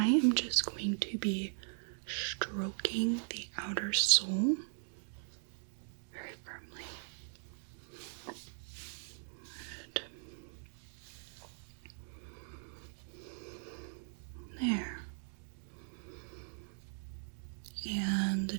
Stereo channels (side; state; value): left; silent; digital silence